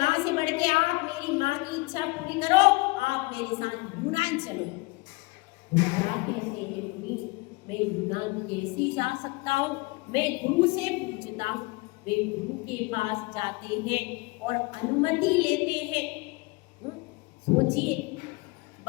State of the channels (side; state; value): right; quieter; 24.6 dB